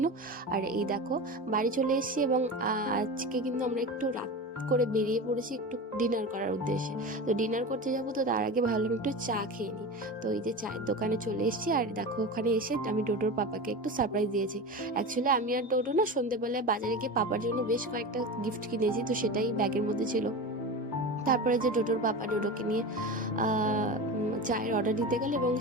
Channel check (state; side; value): normal; both; correlation 0.27